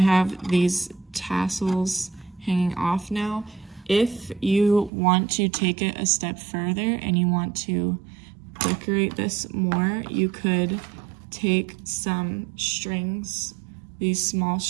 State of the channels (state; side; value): drops out; left; at 4.9 s